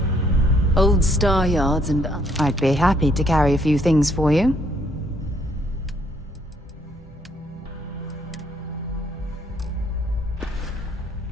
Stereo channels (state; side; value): normal; both; correlation 0.68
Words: Old star yards and... I'd be happy to carry a few things for you.